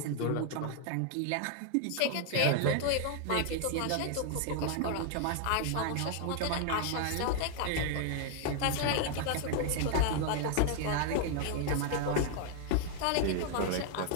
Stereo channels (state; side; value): different; both; correlation 0.00